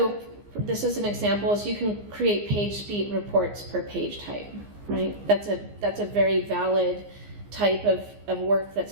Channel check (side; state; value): left; late; 15 ms